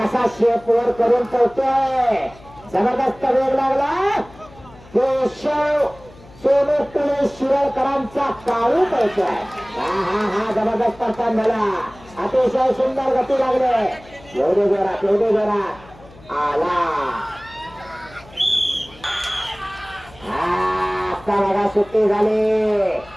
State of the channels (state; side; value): noise; left; hum, 23 dB below the sound